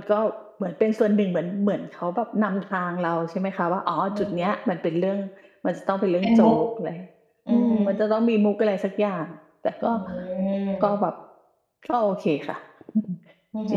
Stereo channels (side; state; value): both; identical; correlation 1.00